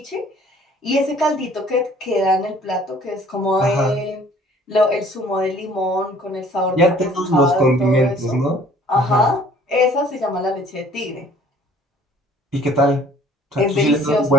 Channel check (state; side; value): normal; both; correlation 0.54